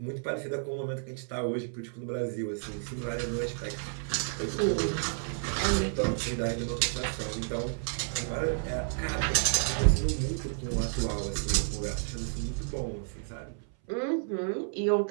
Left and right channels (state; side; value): silent; left; 57 dB below the other